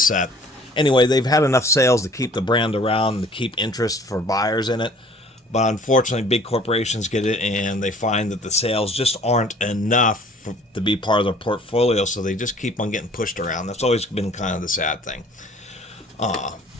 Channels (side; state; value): both; normal; correlation 0.53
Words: Anyway, they've had enough sales to keep the brand around, to keep interest for buyers in it. But unfortunately, big corporations get it and they find that the sales just aren't enough to be part of their portfolio, so they just keep on getting pushed around. That's always been kind of the sad thing.